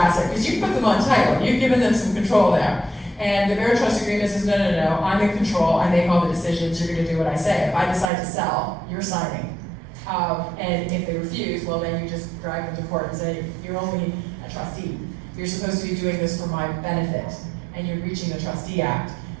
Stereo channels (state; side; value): drops out; left; at 8.1 s